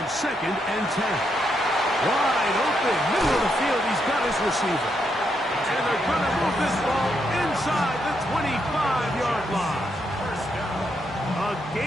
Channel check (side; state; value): both; normal; correlation 0.79